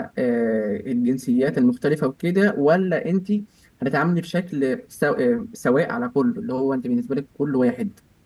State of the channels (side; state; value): both; identical; correlation 1.00